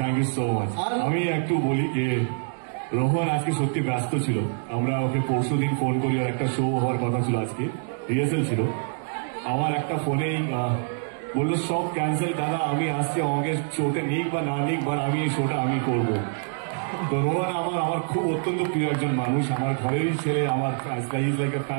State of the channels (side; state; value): left; silent; digital silence